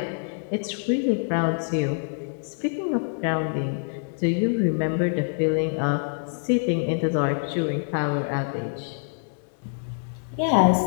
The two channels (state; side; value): silent; right; digital silence